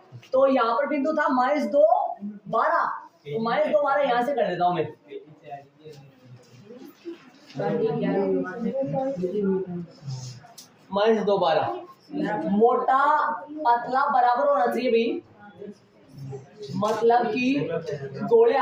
तो यहाँ पर बिंदु था -2 12, तो -2 12 यहाँ से कर देता हूँ मैं। -2 12 मोटा पतला बराबर होना चाहिए भाई, मतलब कि गोले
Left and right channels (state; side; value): identical; both; correlation 1.00